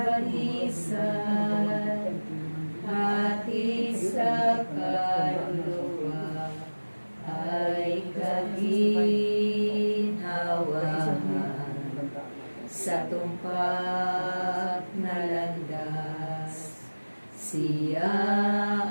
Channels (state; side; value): inverted; both; correlation -1.00